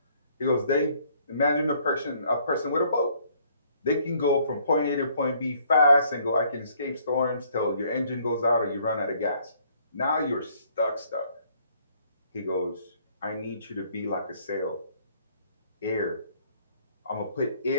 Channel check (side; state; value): both; inverted; correlation -0.63